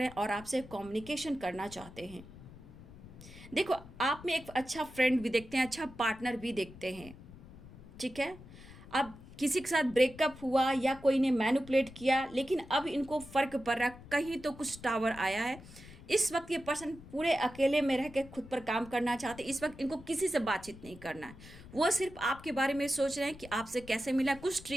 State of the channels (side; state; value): left; noise; rumble, 18 dB below the sound